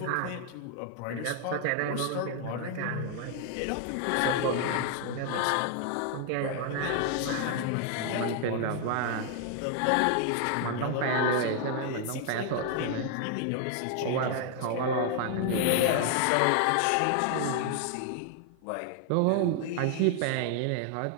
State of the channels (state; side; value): different; both; correlation 0.00